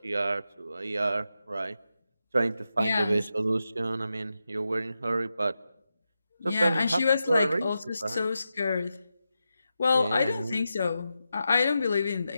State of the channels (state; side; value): inverted; both; correlation -0.89